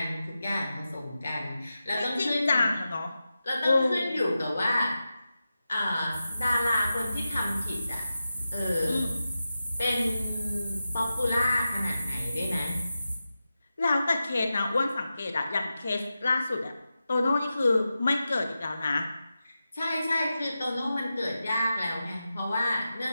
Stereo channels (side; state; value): both; inverted; correlation -0.92